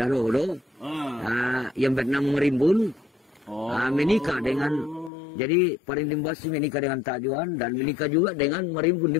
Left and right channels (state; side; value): drops out; right; at 5.1 s